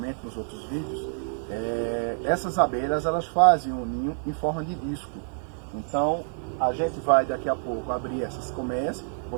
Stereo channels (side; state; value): left; silent; digital silence